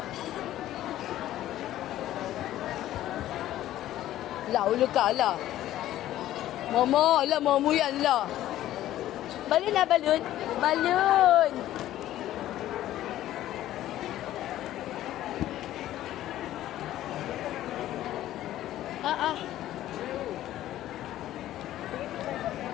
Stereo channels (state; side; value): quieter; right; 13.5 dB